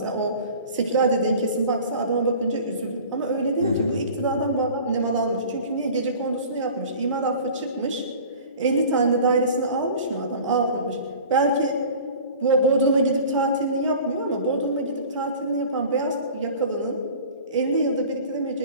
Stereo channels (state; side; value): inverted; both; correlation -0.42